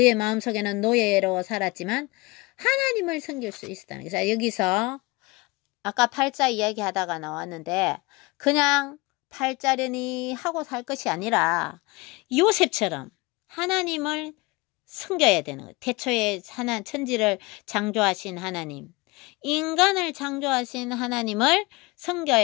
마음속에는 노예로 살았지만 하나님을 섬길 수 있었다는 거죠. 여기서 아까 팔자 이야기하다가 나왔는데 그냥 팔자려니 하고 살 것이 아니라 요셉처럼 하나님을 섬겨야 되는 거예요. 태초에 천지를 창조하신 하나님, 인간을 창조하신 하나님을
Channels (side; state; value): right; quieter; 24.1 dB